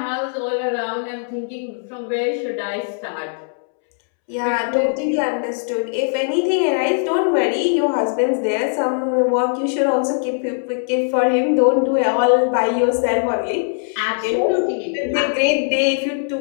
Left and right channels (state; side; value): silent; right; 66 dB below the other